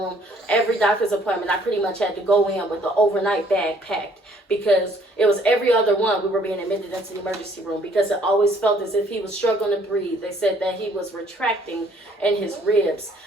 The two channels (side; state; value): both; normal; correlation 0.61